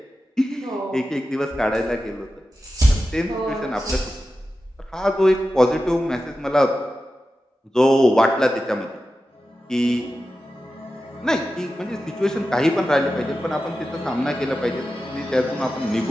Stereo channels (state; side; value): normal; both; correlation 0.92